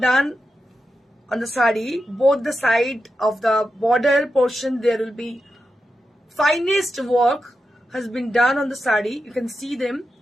done on the sari. Both the side of the border portion, there will be finest work has been done on the sari. You can see them.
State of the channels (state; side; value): normal; both; correlation 0.89